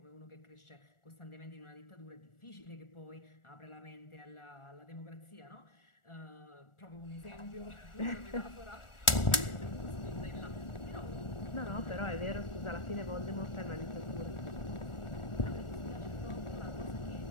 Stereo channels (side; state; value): right; late; 1.4 ms